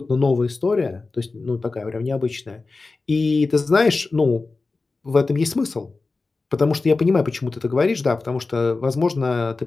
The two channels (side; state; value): right; quieter; 3.7 dB